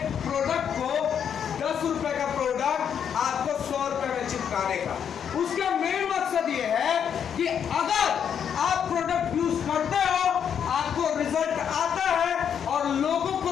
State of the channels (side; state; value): right; quieter; 8.1 dB